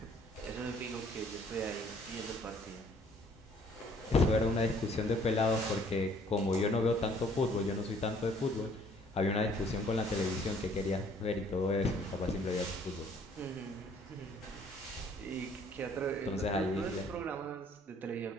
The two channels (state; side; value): normal; both; correlation 0.59